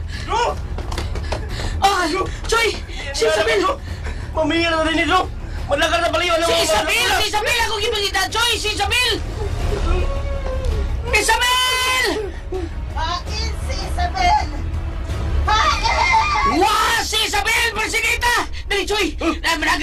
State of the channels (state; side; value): identical; both; correlation 1.00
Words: Choy! Si Isabel! Mamingan na rin ito! Madlagan na baliw! Si Isabel! Si Isabel! Ako gipagita! Choy! Si Isabel! Isabel! Hain si Isabel! Hain! Wah! Si Isabel! Persinita! Dali, Choy!